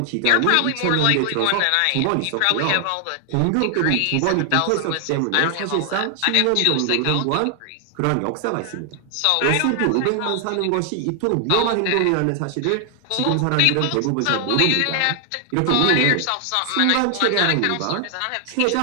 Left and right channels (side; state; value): both; different; correlation 0.00